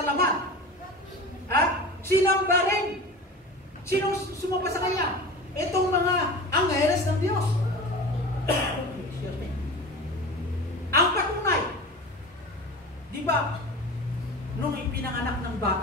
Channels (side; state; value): both; normal; correlation 0.33